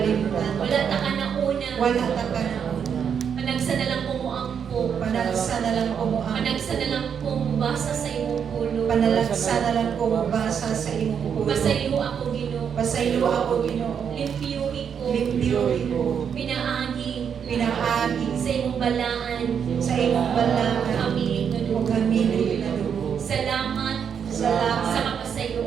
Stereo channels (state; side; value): quieter; left; 7.5 dB